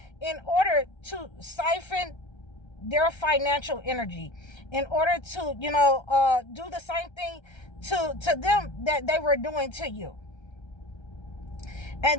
in order to siphon their financial energy, in order to do the same thing to them that they were doing to you.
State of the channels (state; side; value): late; right; 1.3 ms